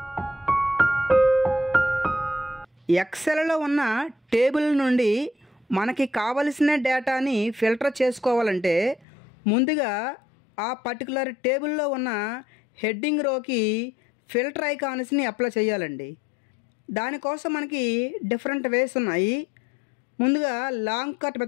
ఎక్సెల్లో ఉన్న టేబుల్ నుండి మనకి కావలసిన డేటాని ఫిల్టర్ చేసుకోవాలంటే ముందుగా ఆ పర్టికులర్ టేబుల్లో ఉన్న హెడ్డింగ్ రోకి ఫిల్టర్ ఐకాన్స్ని అప్లై చేయాలండి. దానికోసం మనకి డిఫరెంట్ వేస్ ఉన్నాయి. ముందుగా లాంగ్ కట్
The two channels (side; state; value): right; drops out; at 9.1 s